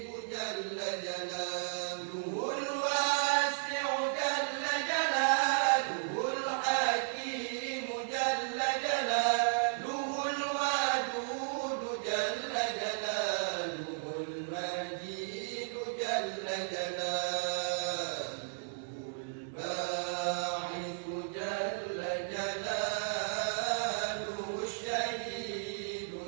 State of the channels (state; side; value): silent; left; digital silence